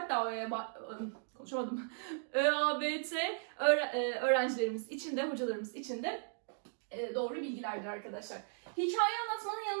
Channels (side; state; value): left; silent; digital silence